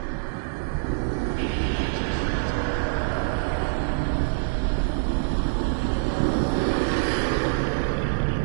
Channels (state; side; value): silent; left; 62 dB below the other